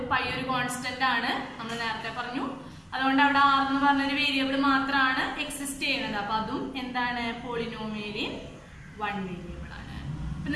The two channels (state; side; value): identical; both; correlation 1.00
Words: പൈ ഒരു കോൺസ്റ്റന്റ് ആണ്, നമ്മൾ നേരത്തെ പറഞ്ഞു. അതുകൊണ്ട് അവിടെ r എന്ന് പറഞ്ഞൊരു വേരിയബിൾ മാത്രമാണ് എക്സിസ്റ്റ് ചെയ്യുന്നത്. അപ്പൊ അതും എന്താണ്? പോളിനോമിയലിൻ വൺ വേരിയബിൾ ആണ്. അപ്പൊ